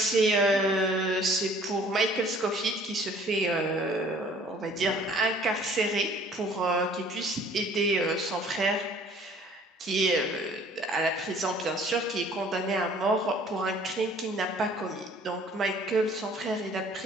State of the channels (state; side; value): normal; both; correlation 0.54